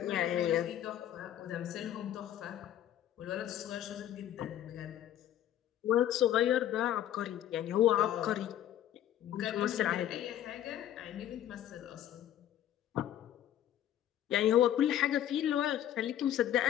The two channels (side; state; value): right; quieter; 11.5 dB